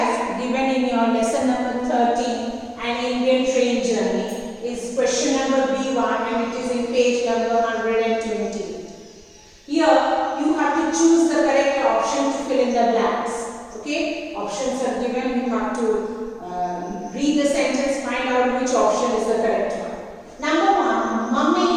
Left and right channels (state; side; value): identical; both; correlation 1.00